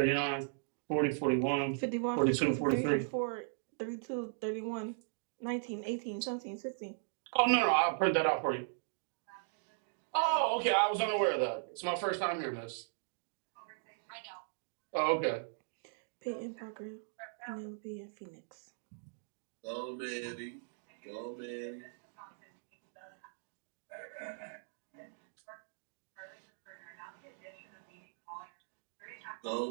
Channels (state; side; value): silent; left; digital silence